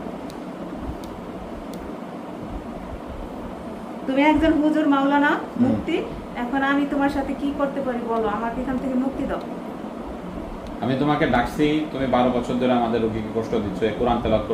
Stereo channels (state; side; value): identical; both; correlation 1.00